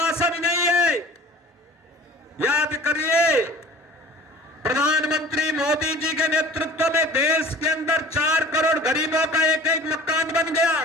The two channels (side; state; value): both; normal; correlation 0.44